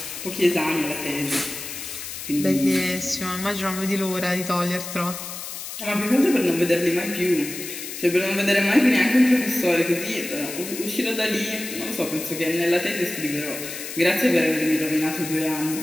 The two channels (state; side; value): noise; left; hiss, 9 dB below the sound